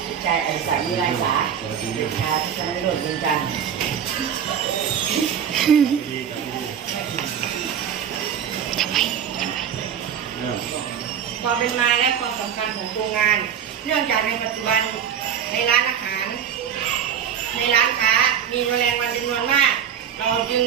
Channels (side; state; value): left; quieter; 8.4 dB